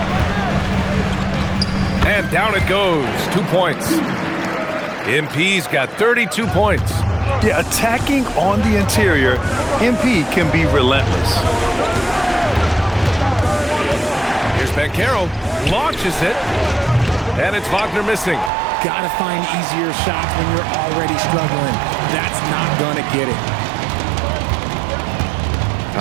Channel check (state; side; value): drops out; left; at 18.5 s